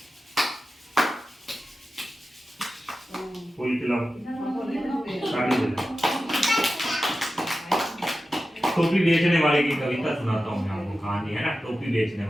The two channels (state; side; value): normal; both; correlation 0.93